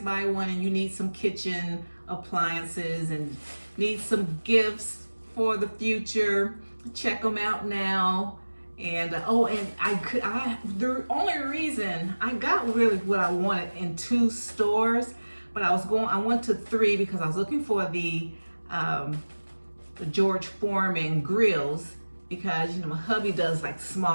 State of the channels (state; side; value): inverted; both; correlation -1.00